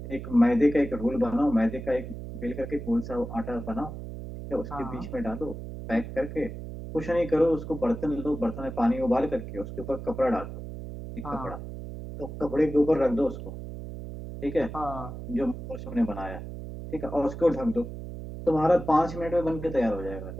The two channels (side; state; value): right; noise; hum, 9 dB below the sound